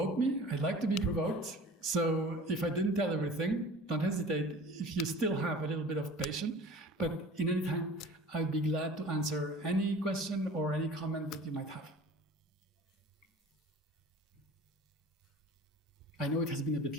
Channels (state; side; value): normal; both; correlation 0.43